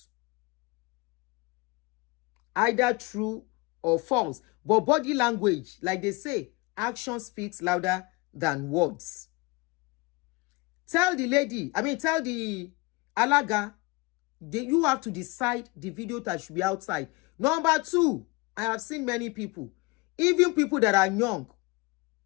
Either true or false. But body language, like they say, action speaks louder than words. Tell the alaga, you have to decide the video that should be outside. Number 2, I have seen many people, even people that are young.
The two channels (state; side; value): quieter; right; 25.5 dB